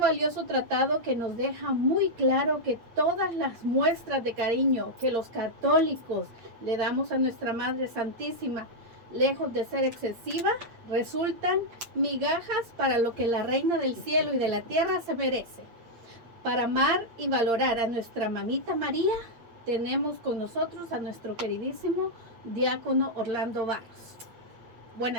tratado que nos deja muy claro que todas las muestras de cariño que los católicos le damos a nuestra Madre Santísima, lejos de ser excesiva, resultan migajas para lo que la Reina del Cielo y de la Tierra se merece. Para amar y valorar a nuestra mamita María, tenemos con nosotros a nuestro queridísimo diácono Orlando Barros.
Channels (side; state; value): left; late; 8.6 ms